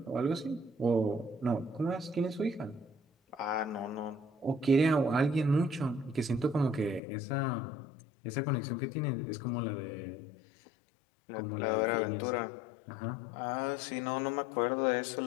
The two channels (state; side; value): drops out; right; at 7.0 s